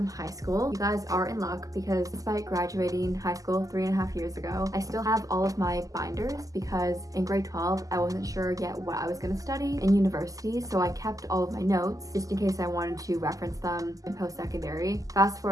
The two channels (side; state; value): left; late; 0.17 ms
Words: high school. You guys are in luck because despite graduating high school 3.5 years ago, I still have all of my binders because in grade 12, I wasn't sure yet what I was going to study in university, so I kept all of my notes just in case I wanted to reference them in post-secondary. Fast